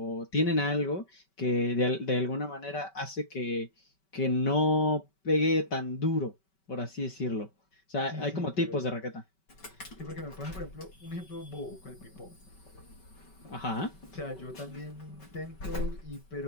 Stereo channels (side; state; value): right; late; 5.2 ms